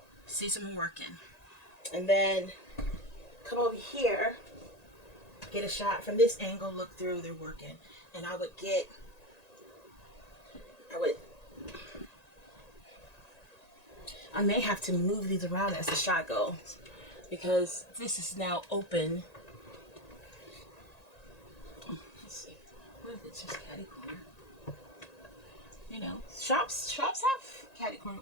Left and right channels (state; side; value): late; right; 1.9 ms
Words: see someone working, and then come over here, get a shot from this angle, look through, they're working, and I may have to move these around as the shot goes because this is now open. Let's see. What if it's just catty corner? You know, shops have catty corner